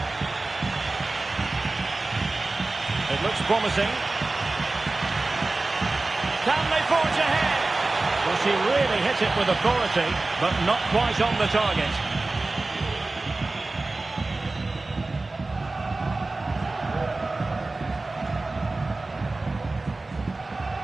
It looks promising. Can they forge ahead? Well, she really hit it with authority, but not quite on the target.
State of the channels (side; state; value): left; quieter; 3.2 dB